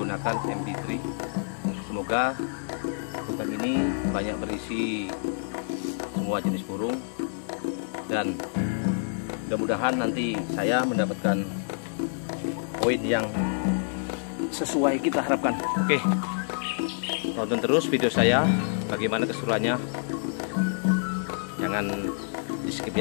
MP3. Semoga hutan ini banyak berisi semua jenis burung, dan mudah-mudahan nanti saya mendapatkan poin yang sesuai kita harapkan. Oke, tonton terus video saya, bagaimana keseruannya. Jangan di skip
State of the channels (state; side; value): silent; right; digital silence